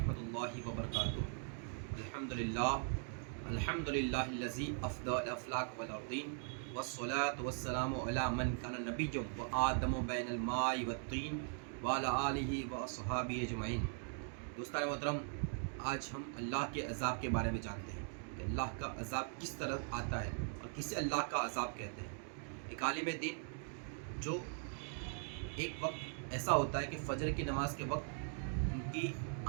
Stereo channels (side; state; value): left; silent; 51 dB below the other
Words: اللہ وبرکاتہ۔ الحمدللہ الذی افضل الافلاک والارضین والصلاة والسلام علی من کان نبیا وآدم بین الماء والطین وعلی آلہ واصحابہ اجمعین۔ دوستان محترم، آج ہم اللہ کے عذاب کے بارے میں جانتے ہیں کہ اللہ کا عذاب کس طرح آتا ہے اور کسے اللہ کا عذاب کہتے ہیں۔ ایک عالم دین جو ایک وقت ایسا ہوتا ہے کہ فجر کی نماز کے وقت ان کی